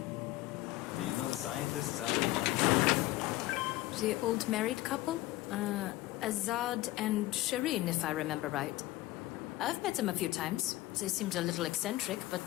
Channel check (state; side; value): quieter; right; 17.4 dB